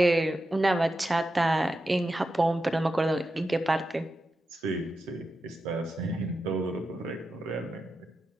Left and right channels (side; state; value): both; normal; correlation 0.89